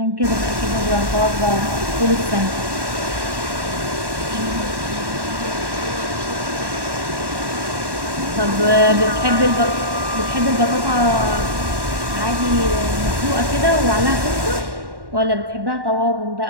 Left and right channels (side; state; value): left; late; 1.1 ms